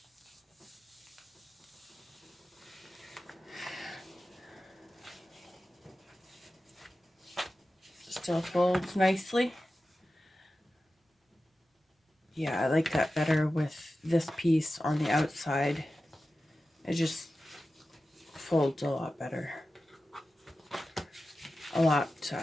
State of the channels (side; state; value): both; normal; correlation 0.94